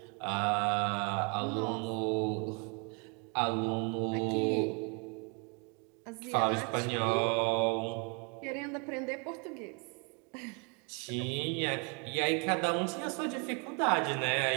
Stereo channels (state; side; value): quieter; left; 35.2 dB